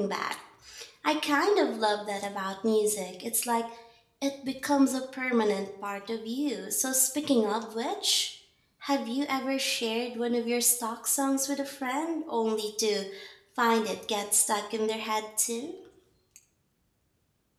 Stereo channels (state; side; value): identical; both; correlation 1.00